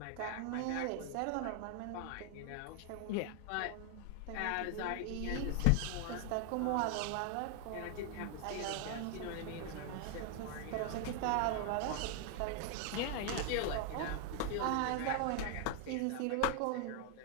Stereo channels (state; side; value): different; both; correlation 0.00